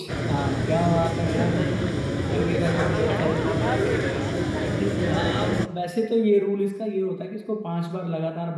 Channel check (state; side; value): identical; both; correlation 1.00